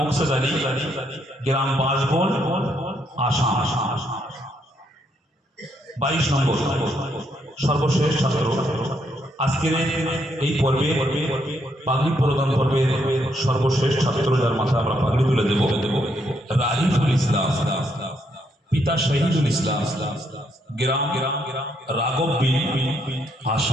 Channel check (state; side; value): normal; both; correlation 0.74